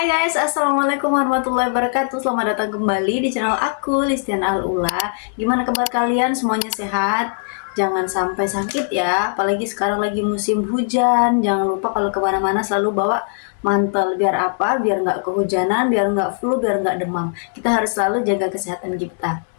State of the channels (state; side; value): silent; right; digital silence